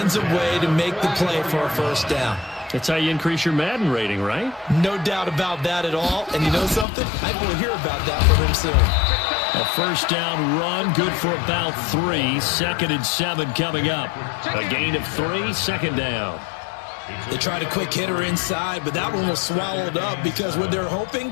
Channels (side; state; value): right; drops out; at 6.9 s